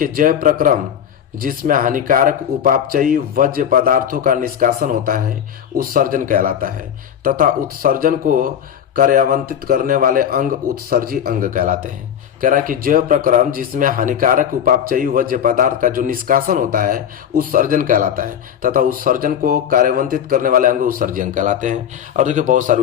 जैव प्रक्रम जिसमें हानिकारक उपापचयी वज्र पदार्थों का निष्कासन होता है उत्सर्जन कहलाता है तथा उत्सर्जन को कार्यान्वित करने वाले अंग उत्सर्जी अंग कहलाते हैं। कह रहा है कि जैव प्रक्रम जिसमें हानिकारक उपापचयी वज्र पदार्थ का जो निष्कासन होता है उत्सर्जन कहलाता है तथा उत्सर्जन को कार्यान्वित करने वाले अंग उत्सर्जी अंग कहलाते हैं। और देखिए बहुत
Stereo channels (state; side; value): quieter; right; 9.1 dB